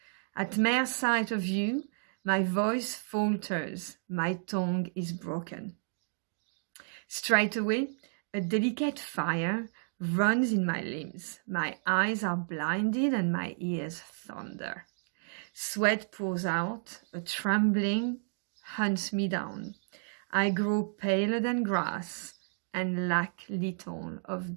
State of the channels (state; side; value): silent; left; digital silence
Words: At mere sight of you, my voice falters, my tongue is broken. Straightway, a delicate fire runs in my limbs. My eyes are blinded and my ears thunder. Sweat pours out, a trembling hunts me down. I grow paler than grass and lack little of